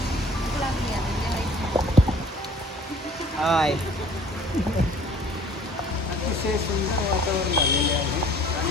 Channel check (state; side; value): normal; both; correlation 0.52